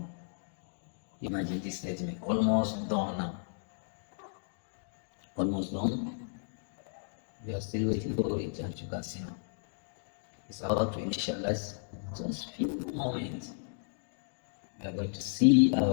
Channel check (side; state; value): right; silent; digital silence